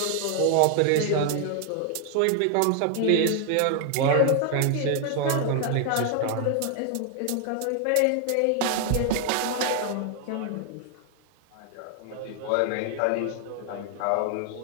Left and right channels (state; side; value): different; both; correlation 0.00